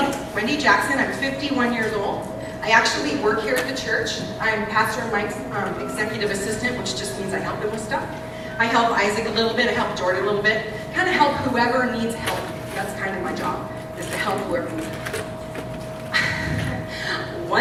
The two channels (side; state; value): both; identical; correlation 1.00